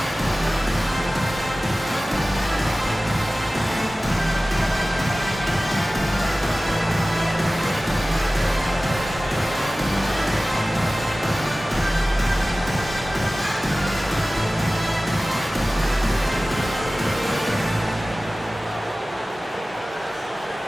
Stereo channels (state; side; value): normal; both; correlation 0.97